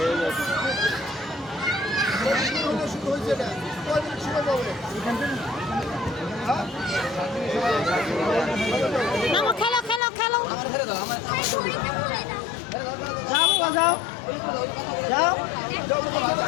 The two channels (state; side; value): drops out; right; at 10.0 s